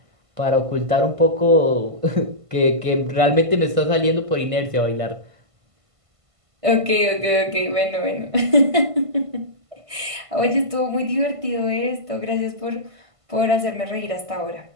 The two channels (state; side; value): late; left; 1.5 ms